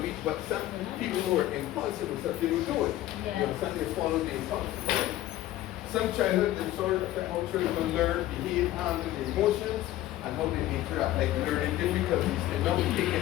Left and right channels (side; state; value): right; quieter; 14.5 dB